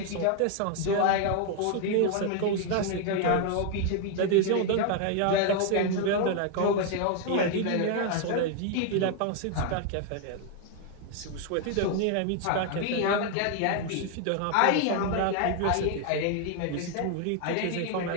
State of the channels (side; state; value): both; different; correlation 0.00